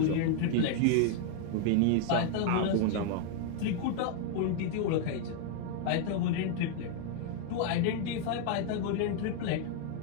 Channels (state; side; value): different; both; correlation 0.00